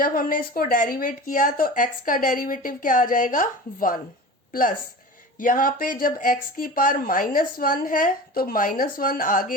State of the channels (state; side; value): normal; both; correlation 0.34